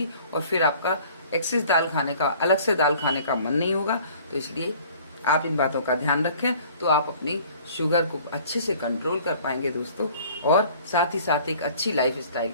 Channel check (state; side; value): inverted; both; correlation -0.51